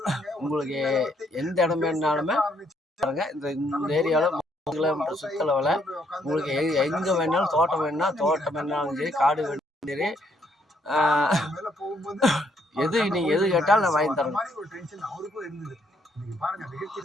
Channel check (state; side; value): normal; both; correlation 0.70